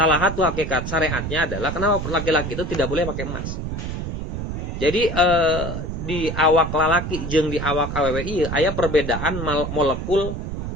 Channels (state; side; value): noise; right; rumble, 5 dB below the sound